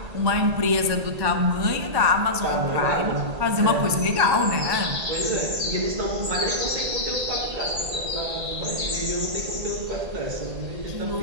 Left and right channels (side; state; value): left; late; 1.8 ms